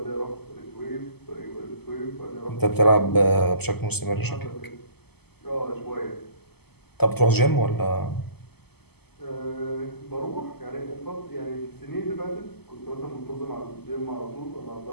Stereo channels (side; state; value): right; late; 0.97 ms